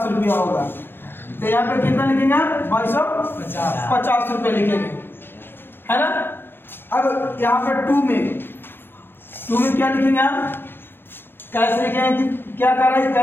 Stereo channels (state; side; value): late; right; 0.099 ms